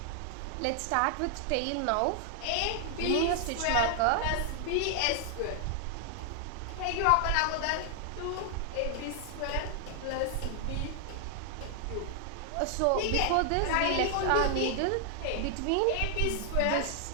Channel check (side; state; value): both; different; correlation 0.00